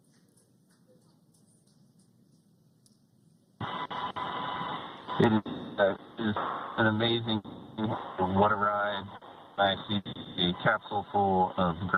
It is an amazing what a ride. I see a capsule full of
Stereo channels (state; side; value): identical; both; correlation 1.00